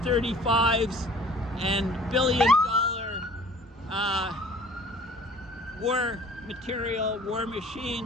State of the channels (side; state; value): both; normal; correlation 0.50